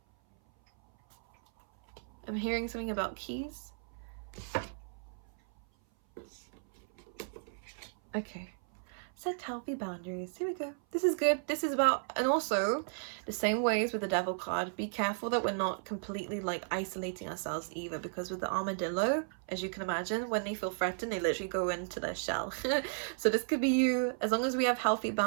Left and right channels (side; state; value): left; silent; 55 dB below the other